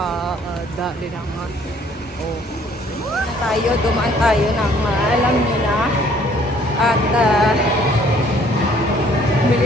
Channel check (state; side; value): normal; both; correlation 0.60